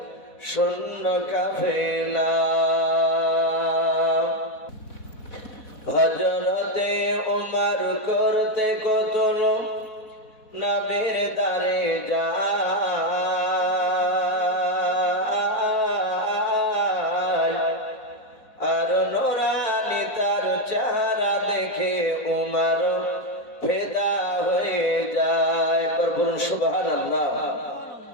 শূন্য কাফেলা। হযরতে উমর করতে কতল নবীর দারে যায়, আর নূরানি তার চেহারা দেখে উমর ফিদা হয়ে যায়। বলুন সুবহানাল্লাহ।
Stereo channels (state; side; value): late; right; 4.1 ms